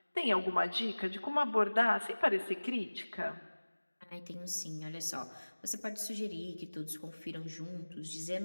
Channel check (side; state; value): both; inverted; correlation -1.00